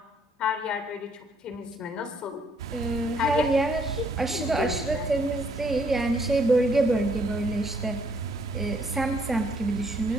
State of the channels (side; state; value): both; normal; correlation 0.67